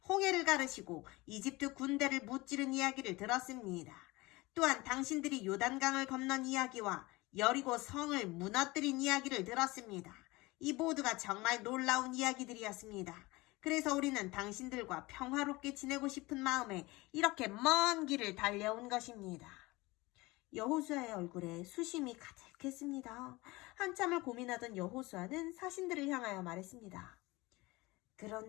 홍해를 가르시고 이집트 군대를 무찌른 이야기를 들었습니다. 또한 당신들이 요단강을 건넌 이야기와 여리고 성을 무너뜨린 이야기를 들었습니다. 이 모두가 정말 놀라운 이야기들이었습니다. 그래서 우리는 당신들과 평화롭게 지내고 싶은 마음에 이렇게 먼 길을 달려온 것입니다. 여호수아의 얼굴에 수심이 가득했습니다. 한참을 고민하던 여호수아는 사신들을 향하여 말했습니다.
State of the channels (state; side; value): quieter; right; 22.0 dB